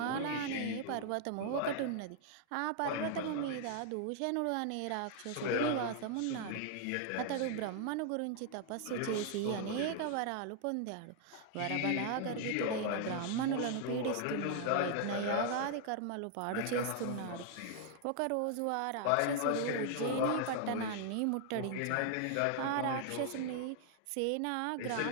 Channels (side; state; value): both; different; correlation 0.00